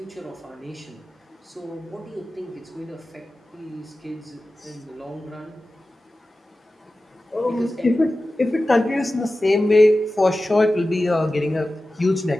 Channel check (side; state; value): both; normal; correlation 0.95